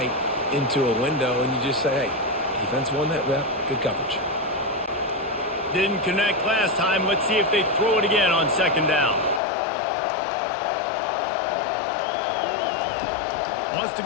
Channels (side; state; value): right; drops out; at 9.4 s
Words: into a window, and you just say, hey, defense won that rep. Good coverage. Didn't connect last time. Let's see if they throw it again on 2nd down. Wants to